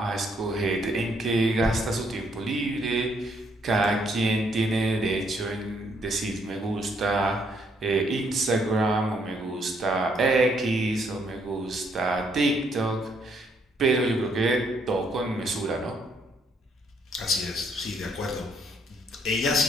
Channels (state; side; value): normal; both; correlation 0.71